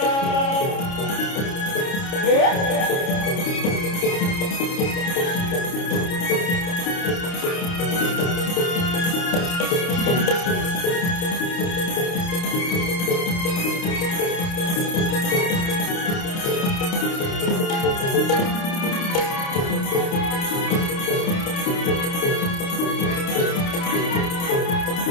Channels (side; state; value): right; late; 29 ms